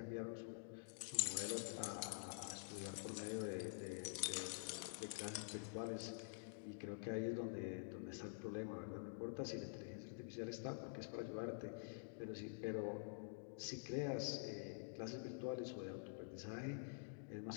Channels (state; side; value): silent; right; digital silence